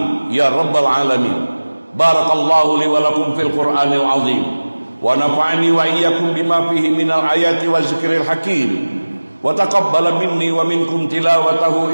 ya rabbal alamin. Barakallahu li wa lakum fil Qur'anil azim, wa nafa'ani wa iyyakum bima fihi minal ayati wa zikril hakim, wa taqabbala minni wa minkum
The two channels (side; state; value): both; inverted; correlation -1.00